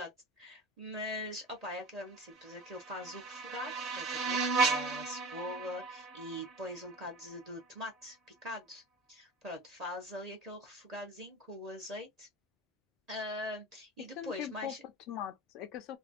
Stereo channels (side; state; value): both; normal; correlation 0.34